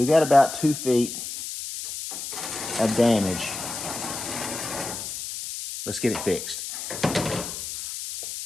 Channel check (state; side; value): noise; left; hiss, 7 dB below the sound